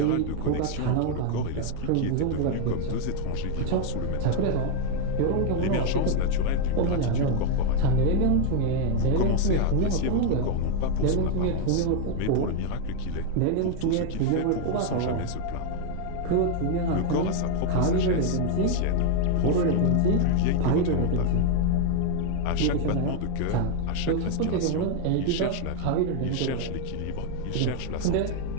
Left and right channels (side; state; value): both; different; correlation 0.00